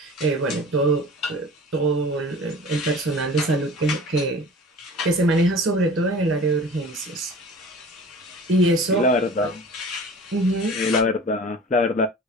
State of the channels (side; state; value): both; normal; correlation 0.41